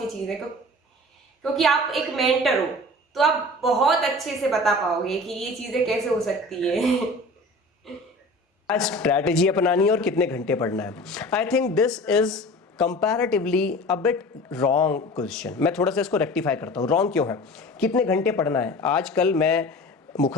चीज है? क्योंकि आप एक मेंटर हो तो आप बहुत अच्छे से बता पाओगे कि ये चीजें कैसे हो सकती है। स्ट्रैटेजी अपनानी है और कितने घंटे पढ़ना है। I think this is comparatively a bit wrong question. मैं थोड़ा सा इसको रेक्टिफाई करता हूँ। रॉन्ग क्यों है? कितने घंटे पढ़ना है? आजकल मैं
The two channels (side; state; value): both; normal; correlation 0.39